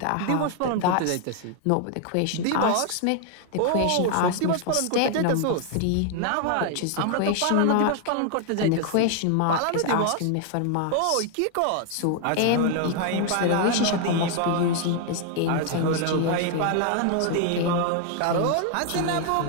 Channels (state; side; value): different; both; correlation 0.00